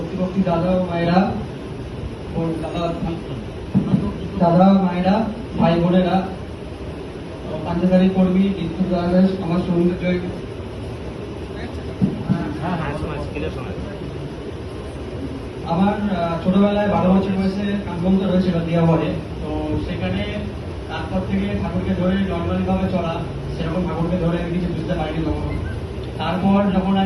দাদা ও মায়েরা, দাদা মায়েরা, ভাই বোনেরা, পাঞ্জাবারি কর্মী, বিদ্যুৎ দাস, আমার সৌন্দর্য। আমার ছোটবেলায় 12 বছর বয়সে কাঠবন্ধ রয়েছিল দিয়াবাড়ে। তো সেখানে তারপর থেকে ঠাকুরকে ধরে নর্মালি ভাবে চলা, সেরকম ঠাকুরকে ধরে আমি কিছু বুঝতে পারিনি কখনো। তারপর যখন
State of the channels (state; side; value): identical; both; correlation 1.00